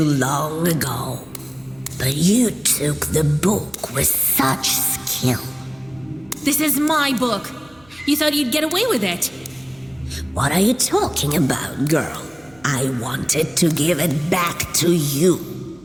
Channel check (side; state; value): right; noise; hum, 29 dB below the sound